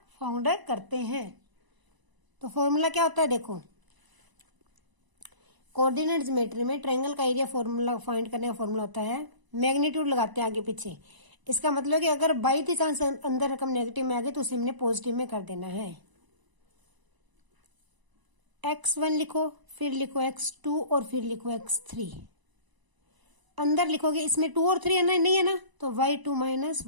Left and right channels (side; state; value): left; late; 1.0 ms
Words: फाउंड करते हैं। तो फार्मूला क्या होता है? देखो, कोऑर्डिनेट ज्योमेट्री में ट्रायंगल का एरिया फॉर्मूला फाइंड करने का फॉर्मूला होता है, मैग्नीट्यूड लगाते हैं आगे पीछे। इसका मतलब कि अगर बाई द चांस अंदर रकम नेगेटिव में आ गई तो उसे हमने पॉजिटिव में कर देना है। x1 लिखो, फिर लिखो x2 और फिर लिखो x3। अंदर लिखोगे, इसमें 2 और 3 है ना? नहीं है ना, तो y2 माइनस